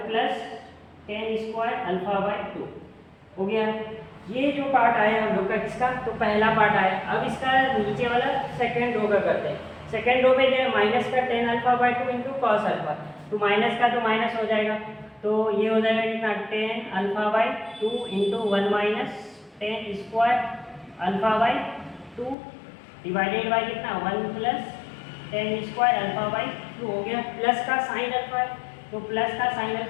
plus tan square alpha by two हो गया। ये जो पार्ट आया हम लोग का किसका, तो पहला पार्ट आया। अब इसका नीचे वाला सेकेंड रो का करते हैं। सेकेंड रो पे क्या माइनस का tan alpha by two into cos alpha, तो माइनस का तो माइनस हो जाएगा, तो ये हो जाएगा कितना ten alpha by two into 1 minus tan square alpha by two divided by कितना 1 plus tan square alpha by two हो गया। प्लस का साइन अल्फा है, तो प्लस का साइन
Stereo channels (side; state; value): right; drops out; at 22.4 s